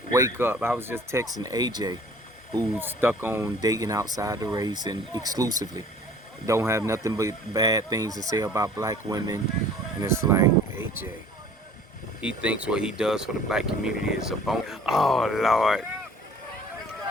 period. wake up. I was just texting AJ, who's stuck on dating outside the race and exclusively. Don't have nothing but bad things to say about black women. And it's like, AJ, he thinks what he does for the black community is a bone. Oh, Lord.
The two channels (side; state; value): both; normal; correlation 0.50